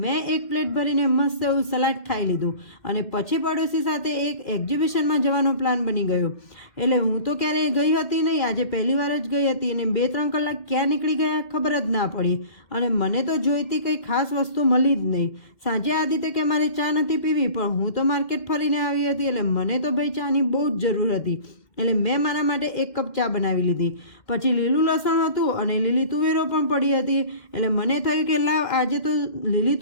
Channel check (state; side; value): late; right; 2.1 ms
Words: મેં એક પ્લેટ ભરીને મસ્ત એવું સલાડ ખાઈ લીધું. અને પછી પડોશી સાથે એક એક્ઝિબિશનમાં જવાનો પ્લાન બની ગયો. એટલે હું તો ક્યારેય ગઈ હતી નહીં, આજે પહેલી વાર જ ગઈ હતી. અને 2-3 કલાક ક્યાં નીકળી ગયા ખબર જ ના પડી. અને મને તો જોઈતી કંઈ ખાસ વસ્તુ મળી જ નહીં. સાંજે આદિત્ય કે મારે ચા નથી પીવી, પણ હું તો માર્કેટ ફરીને આવી હતી, એટલે મને તો ભાઈ ચાની બહુ જ જરૂર હતી. એટલે મેં મારા માટે 1 કપ ચા બનાવી લીધી. પછી લીલું લસણ હતું અને લીલી તુવેરો પણ પડી હતી. એટલે મને થયું કે લાવ આજે તો લીલી